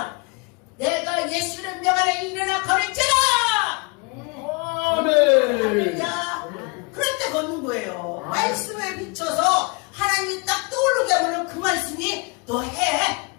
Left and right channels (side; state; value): right; quieter; 30.2 dB